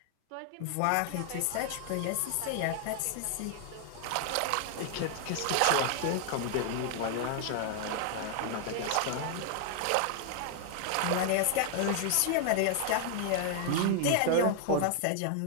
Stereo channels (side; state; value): both; different; correlation 0.00